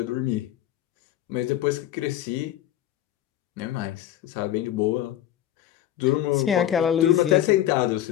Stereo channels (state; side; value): quieter; right; 12.2 dB